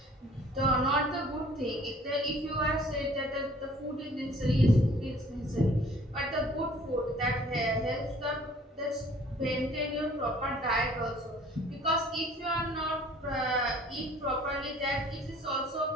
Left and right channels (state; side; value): normal; both; correlation 0.54